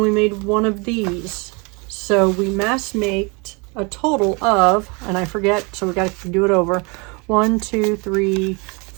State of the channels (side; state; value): left; quieter; 30.2 dB